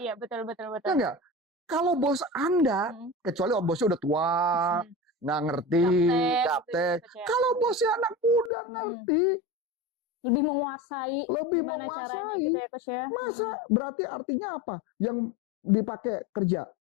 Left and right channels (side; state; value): right; drops out; at 8.5 s